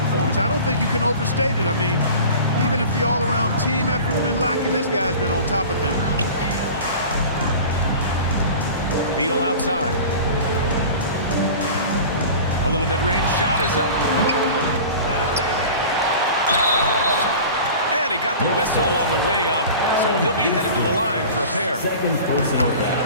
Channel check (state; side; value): inverted; both; correlation -0.38